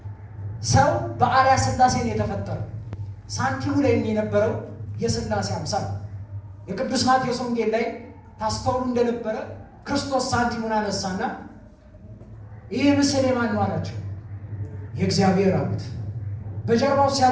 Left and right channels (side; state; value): both; identical; correlation 1.00